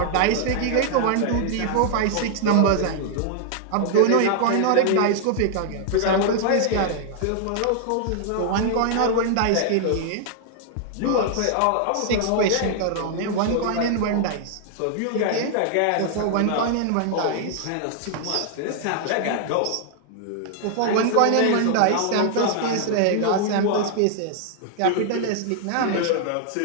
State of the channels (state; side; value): different; both; correlation 0.00